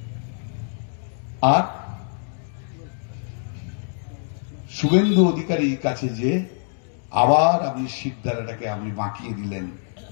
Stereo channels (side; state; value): right; silent; digital silence